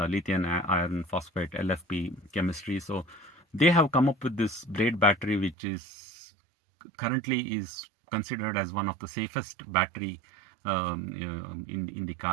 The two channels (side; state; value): left; drops out; at 5.6 s